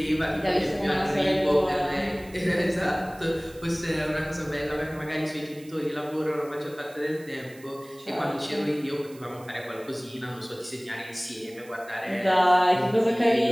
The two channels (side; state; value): right; noise; hiss, 23 dB below the sound